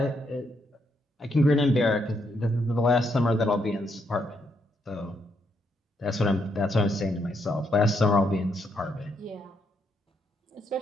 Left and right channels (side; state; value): both; normal; correlation 0.77